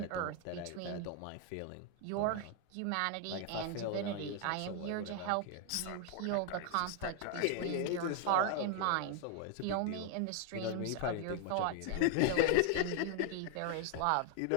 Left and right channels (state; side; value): different; both; correlation 0.00